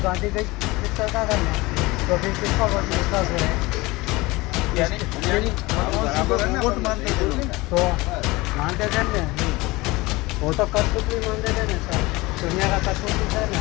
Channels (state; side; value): quieter; right; 21.9 dB